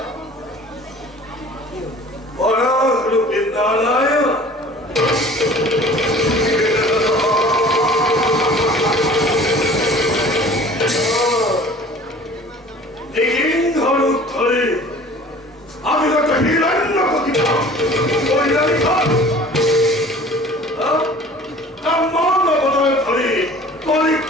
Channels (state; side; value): normal; both; correlation 0.46